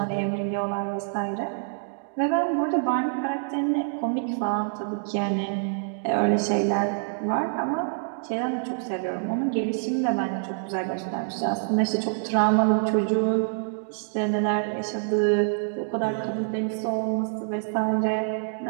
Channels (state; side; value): silent; left; digital silence